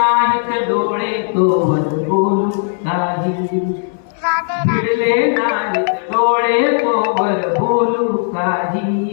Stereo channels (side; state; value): right; silent; 63 dB below the other